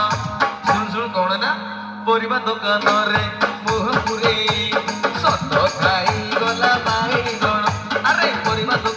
ଶୁଣ ଶୁଣ କଣ ନା ପରିବା ଦୋକାନରେ ମୁହ ପୁରେଇ ସତ ଖାଇଗଲା ବାଇଗଣ ଆରେ ପରିବା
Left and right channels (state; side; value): identical; both; correlation 1.00